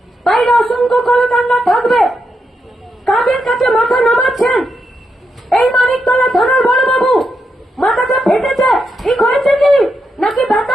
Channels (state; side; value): normal; both; correlation 0.83